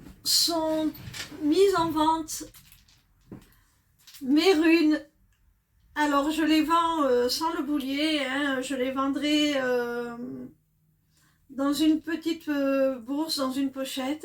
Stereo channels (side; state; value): both; identical; correlation 1.00